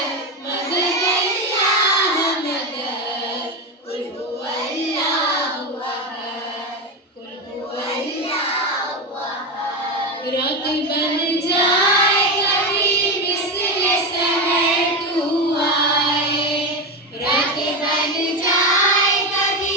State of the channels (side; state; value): both; normal; correlation 0.15